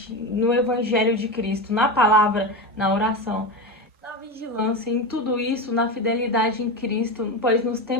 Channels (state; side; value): normal; both; correlation 0.19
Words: no Evangelho de Cristo, na palavra, na oração, na vigilância, em tudo isso, na fidelidade em Cristo, pois nos